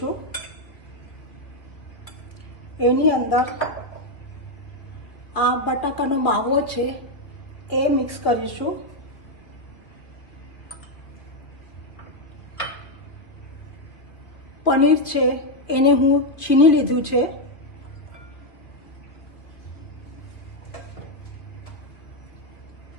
એની અંદર આ બટાકાનો માવો છે એ મિક્સ કરીશું. પનીર છે એને હું છીની લીધું છે.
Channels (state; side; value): late; right; 2.4 ms